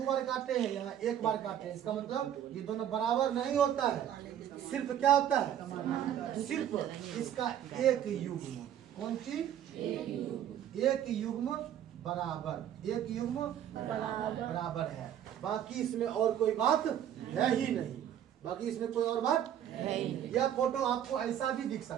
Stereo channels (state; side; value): quieter; left; 10.4 dB